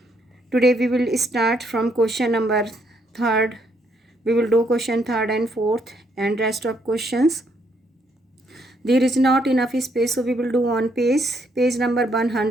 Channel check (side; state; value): both; normal; correlation 0.72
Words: Today we will start from question number 3rd. We will do question 3rd and 4th and rest of questions. There is not enough space, so we will do on page number